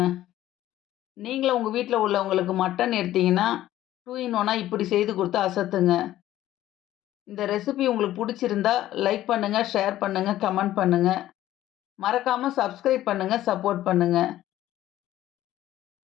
நீங்களும் உங்க வீட்ல உள்ளவங்களுக்கு மட்டன் எடுத்தீங்கன்னா, 2 இன் 1 இப்படி செய்து குடுத்து அசத்துங்க. இந்த ரெசிபி உங்களுக்கு புடிச்சிருந்தா லைக் பண்ணுங்க, ஷேர் பண்ணுங்க, கமெண்ட் பண்ணுங்க. மறக்காம சப்ஸ்கிரைப் பண்ணுங்க, சப்போர்ட் பண்ணுங்க.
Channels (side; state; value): right; quieter; 13.8 dB